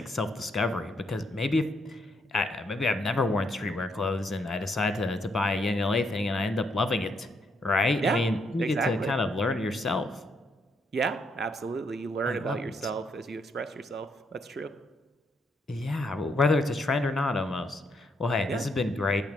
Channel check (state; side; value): normal; both; correlation 0.75